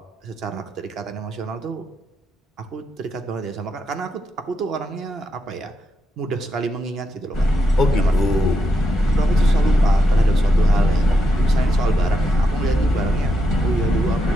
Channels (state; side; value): normal; both; correlation 0.83